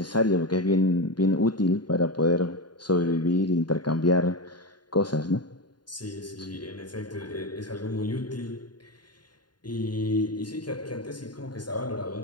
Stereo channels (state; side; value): late; right; 0.71 ms